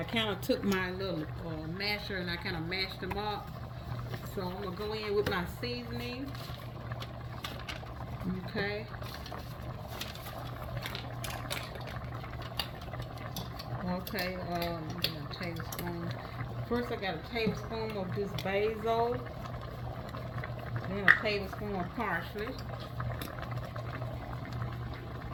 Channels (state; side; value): identical; both; correlation 1.00